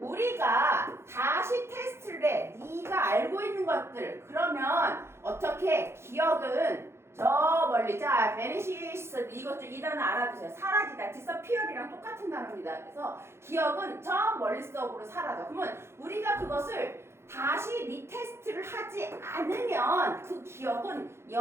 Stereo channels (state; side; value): late; left; 0.12 ms